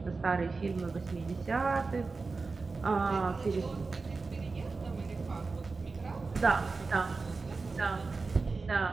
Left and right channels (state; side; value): quieter; left; 4.1 dB